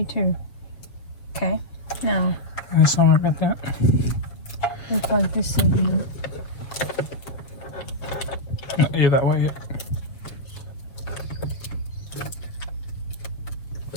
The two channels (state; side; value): late; right; 7.6 ms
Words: 2. Okay, now I'm sorry about that. we'll plug this in here. Not you that way yet.